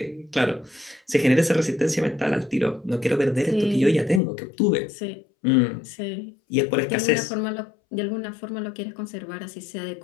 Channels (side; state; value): right; drops out; at 4.2 s